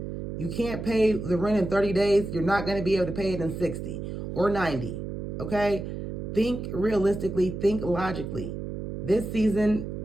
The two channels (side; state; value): right; noise; hum, 6 dB below the sound